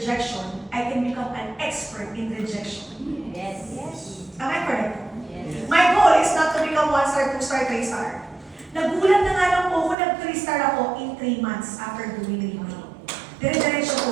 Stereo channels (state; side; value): drops out; left; at 10.0 s